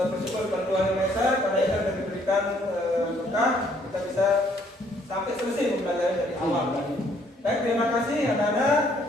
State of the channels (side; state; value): both; normal; correlation 0.65